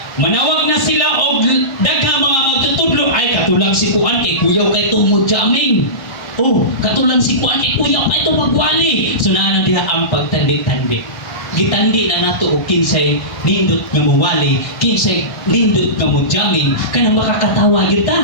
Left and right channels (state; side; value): late; right; 1.3 ms